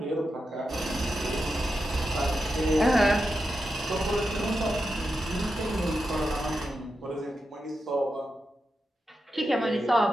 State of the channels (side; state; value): both; normal; correlation 0.88